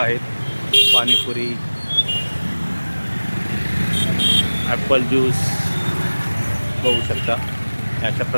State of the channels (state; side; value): inverted; both; correlation -1.00